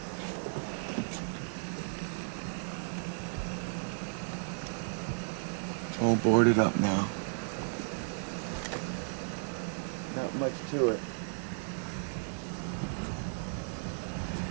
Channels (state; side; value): silent; left; digital silence